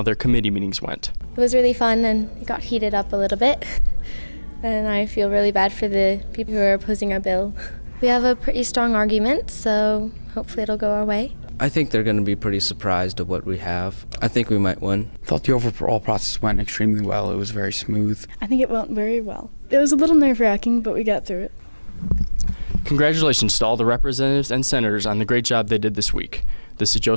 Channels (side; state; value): both; inverted; correlation -1.00